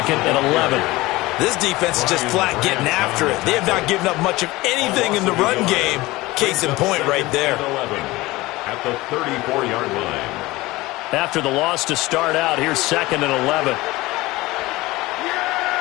and 11. This defense is just flat getting after it. They have not given up much of anything in the run game. Case in point right there. At the 34-yard line. After the loss to start out, here's 2nd and 11.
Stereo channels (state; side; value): quieter; right; 19.9 dB